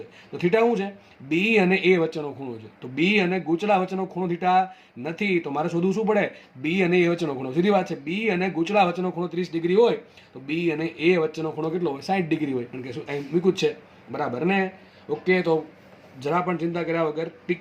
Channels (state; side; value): identical; both; correlation 1.00